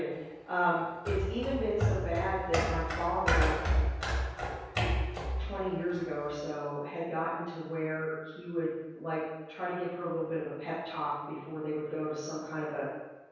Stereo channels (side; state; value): both; identical; correlation 1.00